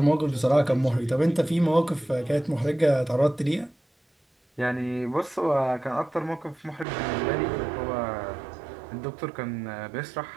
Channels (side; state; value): left; drops out; at 6.9 s